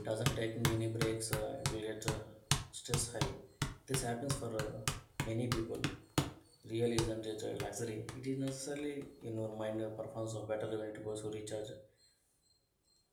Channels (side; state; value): both; identical; correlation 1.00